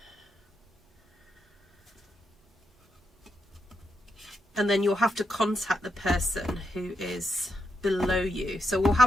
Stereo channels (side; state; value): both; normal; correlation 0.83